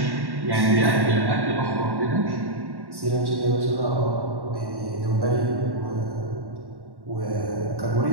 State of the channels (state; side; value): late; left; 1.1 ms